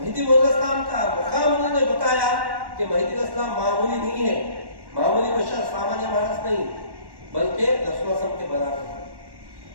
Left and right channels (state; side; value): late; left; 1.1 ms